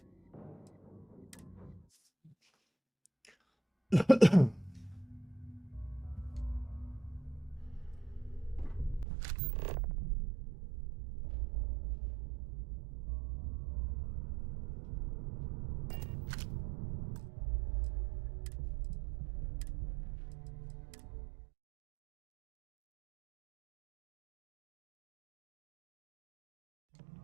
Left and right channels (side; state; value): left; drops out; at 9.1 s